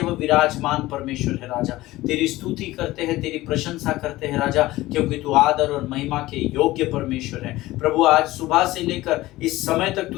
विराजमान परमेश्वर है राजा। तेरी स्तुति करते हैं, तेरी प्रशंसा करते हैं राजा, क्योंकि तू आदर और महिमा के योग्य परमेश्वर है। प्रभु, आज सुबह से लेकर इस समय तक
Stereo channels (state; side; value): quieter; right; 17.7 dB